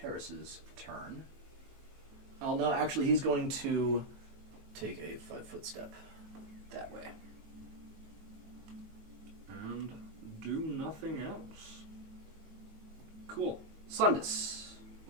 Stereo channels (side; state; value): left; late; 19 ms